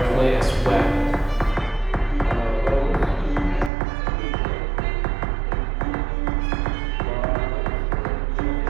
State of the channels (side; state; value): left; drops out; at 3.7 s